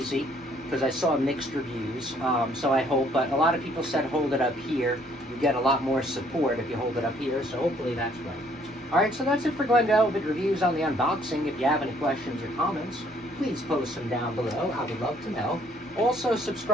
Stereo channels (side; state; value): both; normal; correlation 0.63